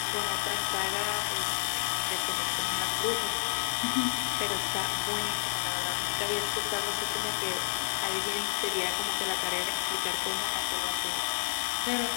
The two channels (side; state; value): right; silent; 58 dB below the other